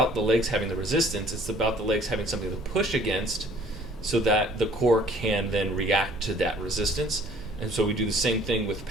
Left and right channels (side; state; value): both; normal; correlation 0.55